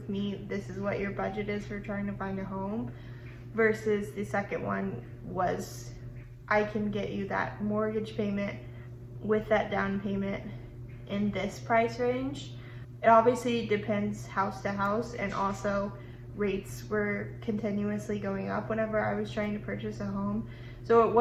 me, this is what your budget is for trying to find a home, versus the second one was I can get you that mortgage payment with that down payment in this price range. It obviously depends house to house, and also rates were continuously going up whenever I was trying to purchase a home. So it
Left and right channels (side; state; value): both; identical; correlation 1.00